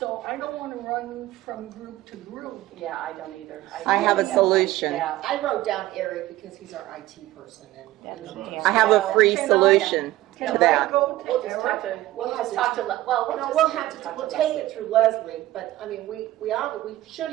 I don't want to run from group to group. Yeah, I don't either. I have a really don't solution. like that. I wrote down Eric because he's our IT person and. I have a free Can I- solution Can to I that. go We'll to just talk to, We'll we'll have just to- talk to, well, No, just we'll have talk to, we'll to take Leslie. it through Leslie, but I mean, we should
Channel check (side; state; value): left; quieter; 16.2 dB